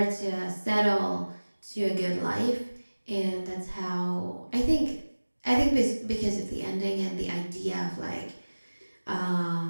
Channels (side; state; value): both; inverted; correlation -1.00